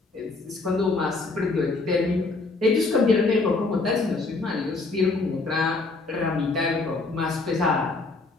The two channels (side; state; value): right; quieter; 3.6 dB